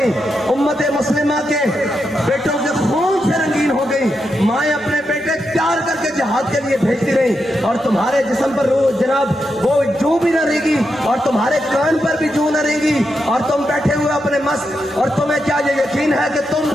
امت مسلمہ کے بیٹوں کے خون سے رنگین ہو گئی، مائیں اپنے بیٹے تیار کر کے جہاد کے لیے بھیجتی رہیں، اور تمہارے جسم پر جناب وہ جو بھی نہ رہے گی، اور تمہارے کان پر بھی جو نہ رہے گی، اور تم بیٹھے ہوئے اپنے مست، اور تمہیں کیا یہ یقین ہے کہ تم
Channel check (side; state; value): both; normal; correlation 0.85